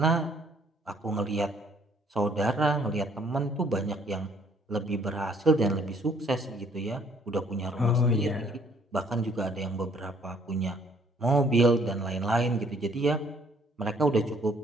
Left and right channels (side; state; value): both; normal; correlation 0.62